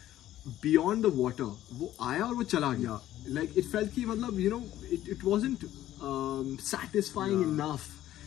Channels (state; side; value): quieter; right; 13.4 dB